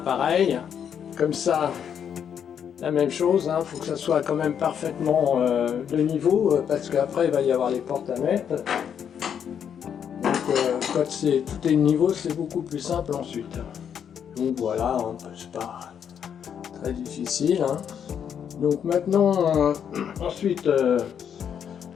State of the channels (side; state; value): right; quieter; 8.2 dB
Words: pareil. Comme ça, la même chose, hein, faut que ça soit quand même parfaitement de niveau, parce qu'après il va y avoir les portes à mettre. Donc quand tout est de niveau, c'est beaucoup plus simple ensuite. Donc voilà, hein, c'est pas très difficile. Hein. Donc maintenant, ensuite,